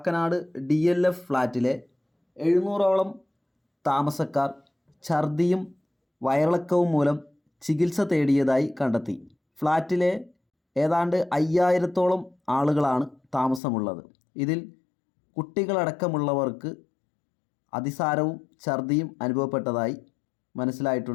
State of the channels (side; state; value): right; drops out; at 13.6 s